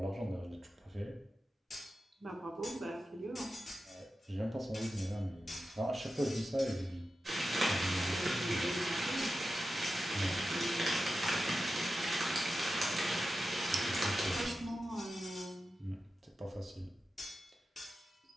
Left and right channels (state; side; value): normal; both; correlation 0.92